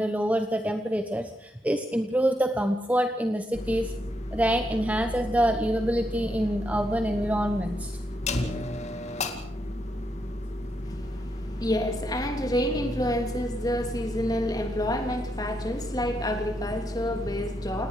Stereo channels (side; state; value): both; normal; correlation 0.80